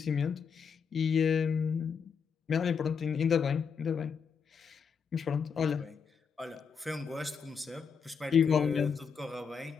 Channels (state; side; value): quieter; right; 6.3 dB